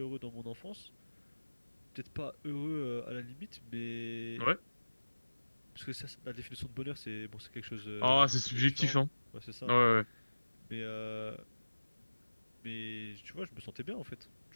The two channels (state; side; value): inverted; both; correlation -1.00